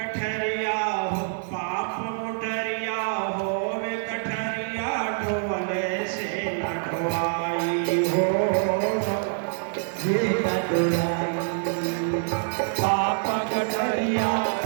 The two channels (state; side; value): silent; left; 55 dB below the other